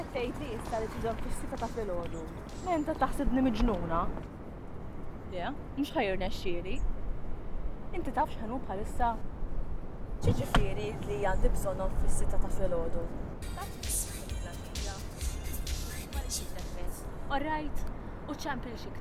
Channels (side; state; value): both; identical; correlation 1.00